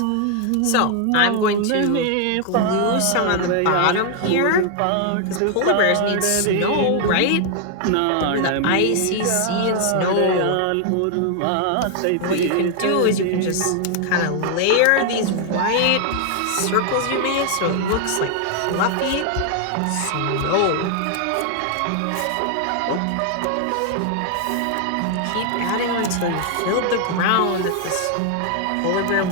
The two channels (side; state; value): both; different; correlation 0.00